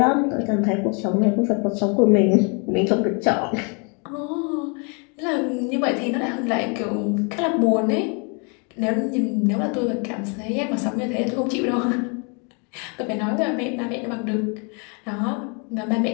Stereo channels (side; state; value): right; quieter; 35.3 dB